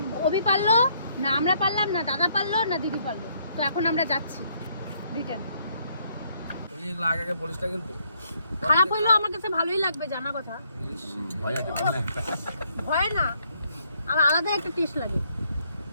অভি পারলো, না আমরা পারলাম, না দাদা পারলো, না দিদি পারলো। তো এখন আমরা যাচ্ছি রিটার্ন। খারাপ হইলেও আমার কাছে ভালোই লাগবে, জানা কথা। ভয় না, আর আলাদা একটা টেস্ট লাগে।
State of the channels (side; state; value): both; inverted; correlation -0.70